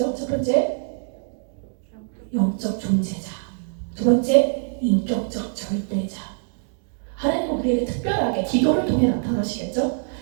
첫 번째, 영적 존재자. 두 번째, 인격적 절대자. 하나님은 우리에게 특별하게 기도를 통해 나타나시겠죠?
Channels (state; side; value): silent; left; 61 dB below the other